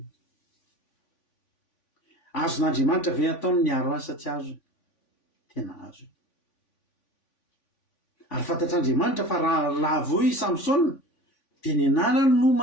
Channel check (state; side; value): late; right; 3.5 ms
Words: Azon'Andriamanitra ve ataony niaro azy sa tsy azony? Tena azony. Ary fantatr'Andriamanitra fa raha voy Samsona dia ny anarany no